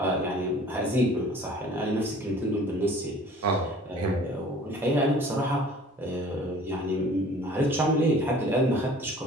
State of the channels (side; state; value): both; normal; correlation 0.49